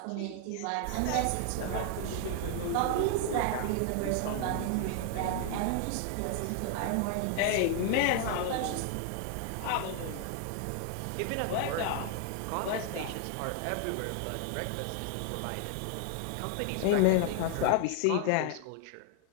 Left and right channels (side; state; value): both; different; correlation 0.00